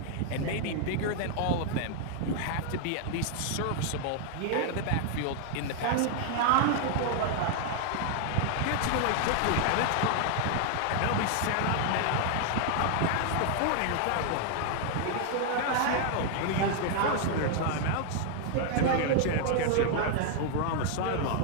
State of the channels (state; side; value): different; both; correlation 0.00